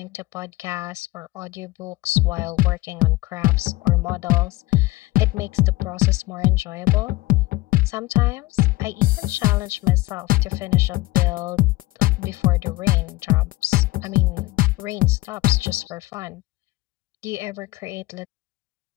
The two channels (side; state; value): right; quieter; 19.9 dB